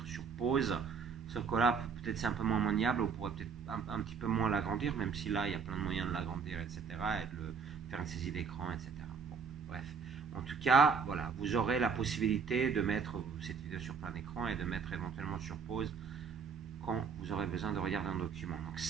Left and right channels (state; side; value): quieter; left; 6.0 dB